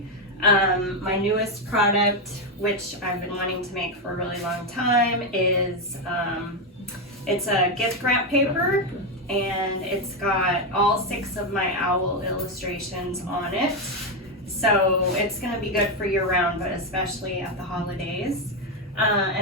My newest product, which I've been wanting to make for a really long time, is it's a gift wrap paper, and it's got all 6 of my owl illustrations on it. So it's gonna be good for year round, but especially at the holidays.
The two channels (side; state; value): both; normal; correlation 0.06